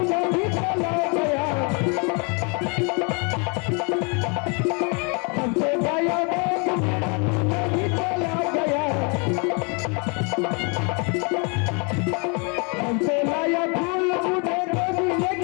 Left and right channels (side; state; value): right; quieter; 34.0 dB